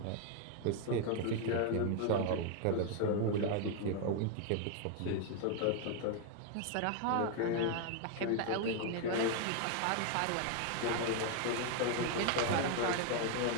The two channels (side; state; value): both; different; correlation 0.01